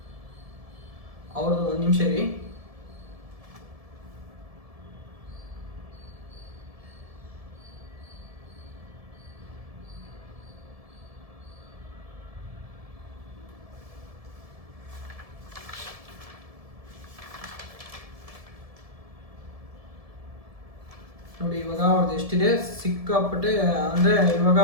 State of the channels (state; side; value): late; left; 1.7 ms